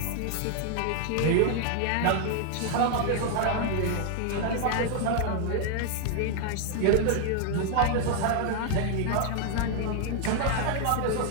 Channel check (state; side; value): different; both; correlation 0.00